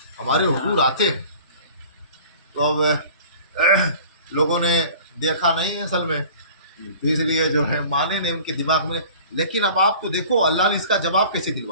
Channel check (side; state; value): both; inverted; correlation -0.45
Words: ہمارے حضور آتے ہیں۔ تو اب لوگوں نے دیکھا نہیں اصل میں، تو اس لیے جو ہے مانے نہیں ان کے دماغ میں۔ لیکن اب آپ کو دیکھو اللہ نے اس کا جواب کیسے